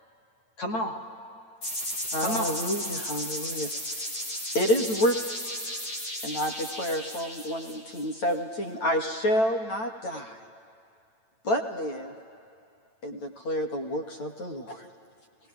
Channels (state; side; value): late; right; 9.0 ms